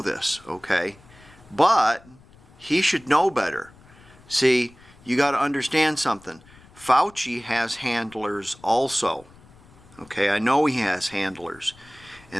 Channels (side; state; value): left; noise; rumble, 25 dB below the sound